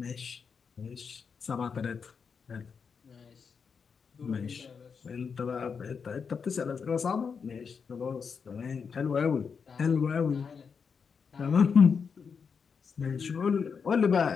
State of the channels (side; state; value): right; quieter; 6.0 dB